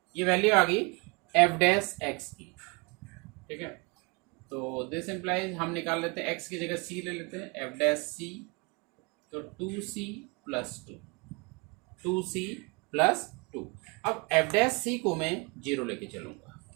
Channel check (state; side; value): quieter; left; 29.8 dB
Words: ये वैल्यू आ गई f' की, ठीक है। तो दिस इम्प्लाइज हम निकाल लेते हैं, x की जगह c ले लेते हैं, f', तो 2c प्लस 2। अब f' को मैं 0 लेके चलूंगा,